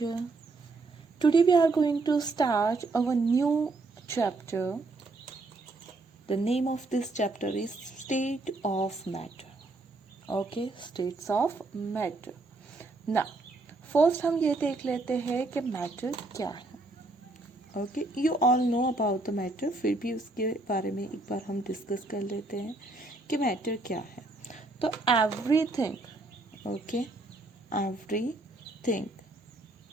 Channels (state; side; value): quieter; left; 3.1 dB